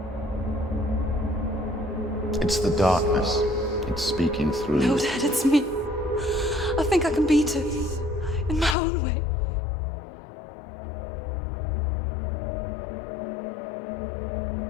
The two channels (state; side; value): drops out; right; at 8.8 s